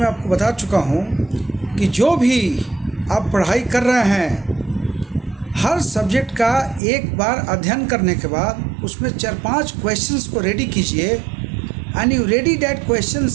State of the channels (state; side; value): drops out; left; at 6.8 s